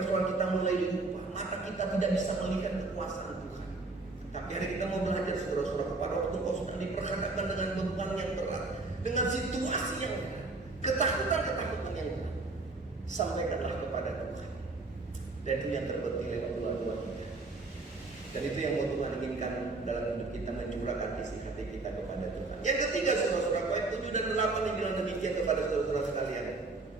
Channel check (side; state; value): left; quieter; 3.4 dB